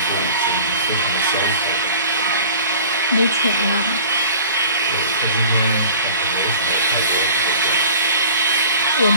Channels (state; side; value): inverted; both; correlation -0.45